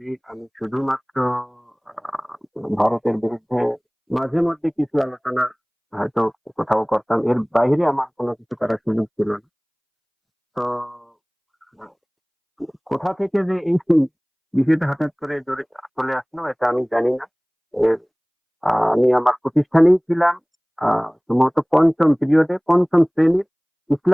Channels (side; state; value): both; identical; correlation 1.00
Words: আমি শুধুমাত্র আহ, ভারতের বিরুদ্ধে মাঝে মধ্যে কিছু আলোচনা হয়তো কোথাও করতাম, এর বাইরে আমার কোনো কিছু করার সুযোগ ছিল না। তো কোথা থেকে যে এই বিষয়টা হঠাৎ করে চলে আসলো এটা আমি জানি না। এর আমি আমার প্রতিষ্ঠানেই ছিলাম, সম্ভবত পঞ্চম পিরিয়ডে, পঞ্চম শ্রেণীর